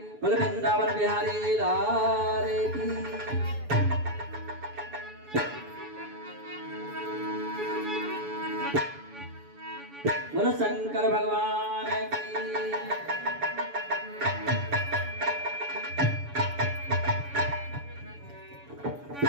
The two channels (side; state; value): left; late; 7.0 ms